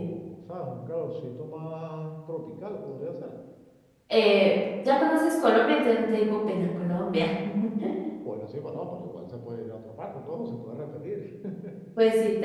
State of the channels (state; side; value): identical; both; correlation 1.00